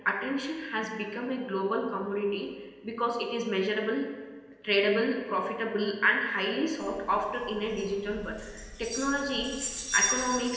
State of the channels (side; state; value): both; identical; correlation 1.00